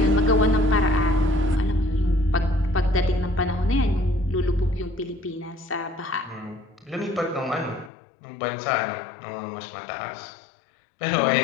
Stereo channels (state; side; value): drops out; right; at 7.9 s